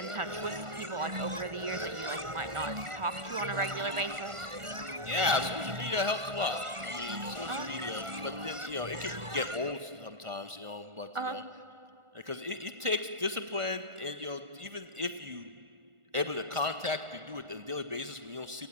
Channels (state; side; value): late; left; 1.4 ms